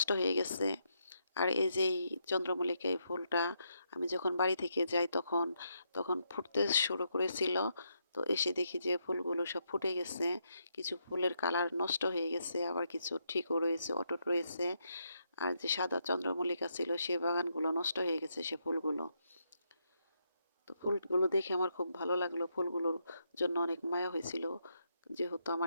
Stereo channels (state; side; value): inverted; both; correlation -0.79